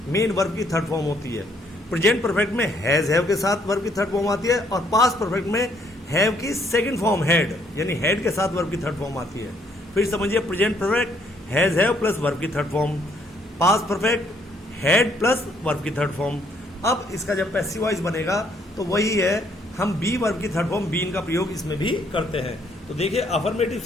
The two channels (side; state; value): both; normal; correlation 0.68